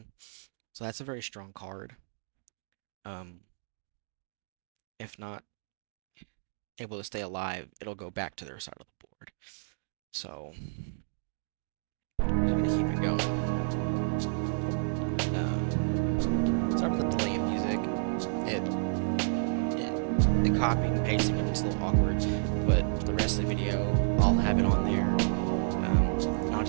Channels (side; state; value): left; silent; digital silence